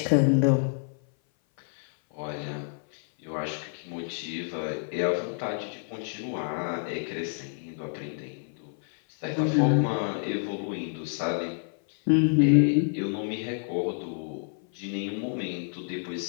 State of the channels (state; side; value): silent; right; 56 dB below the other